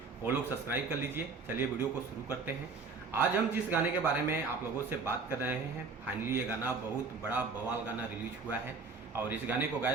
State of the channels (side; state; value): left; quieter; 4.5 dB